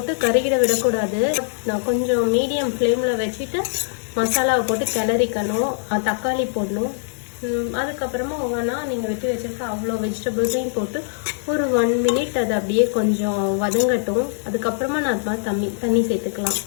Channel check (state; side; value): silent; right; 57 dB below the other